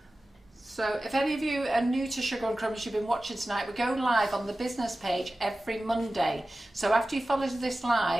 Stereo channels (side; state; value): both; normal; correlation 0.96